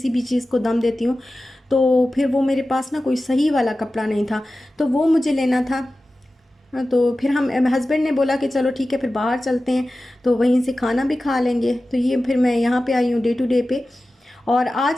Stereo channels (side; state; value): both; normal; correlation 0.95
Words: भी चीज़ को दम देती हूँ, तो फिर वो मेरे पास ना कोई सही वाला कपड़ा नहीं था, तो वो मुझे लेना था। तो फिर हम हस्बैंड ने बोला कि चलो ठीक है फिर बाहर चलते हैं, तो वहीं से खाना भी खा लेंगे। तो ये फिर मैं यहाँ पे आई हूँ डे टू डे पे। और